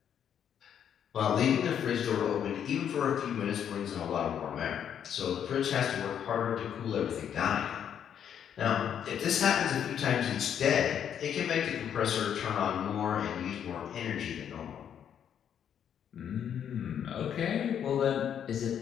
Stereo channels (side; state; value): right; quieter; 8.9 dB